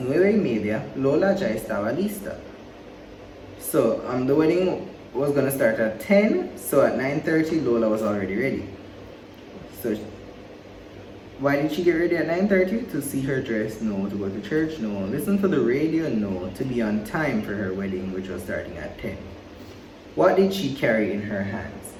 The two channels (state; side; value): identical; both; correlation 1.00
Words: 9:30, Lola ya estaba lista. So the wedding was going to start at 10. So at 9:30, Lola was already ready. So why did she get ready at 9:30? To see her dress? No. To go to church? No. Listen to the radio? No. To be on time for her wedding, which was starting at 10. What did she carry in her hands?